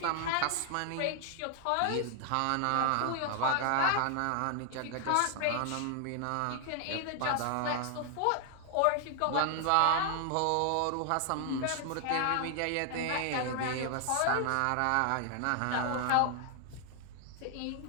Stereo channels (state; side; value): different; both; correlation 0.00